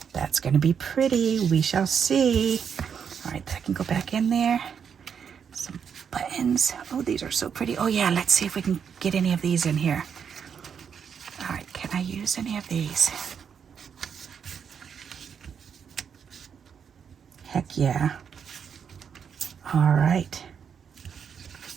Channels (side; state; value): left; quieter; 7.2 dB